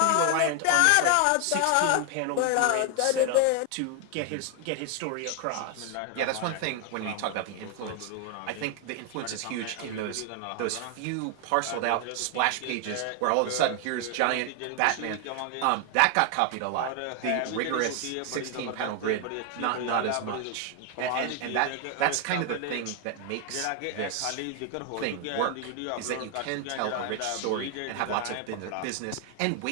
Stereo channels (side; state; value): both; different; correlation 0.00